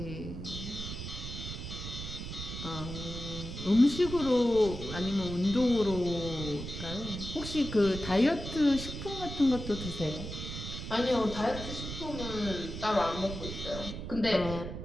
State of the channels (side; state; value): right; noise; rumble, 8 dB below the sound